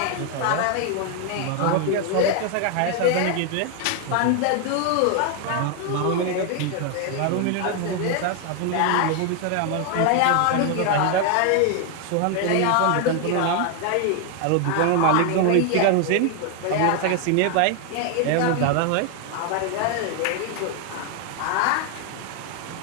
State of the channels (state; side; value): different; both; correlation 0.00